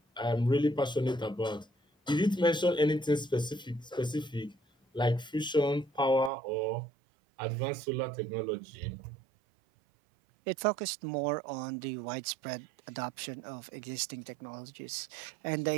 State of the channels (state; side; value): drops out; left; at 6.3 s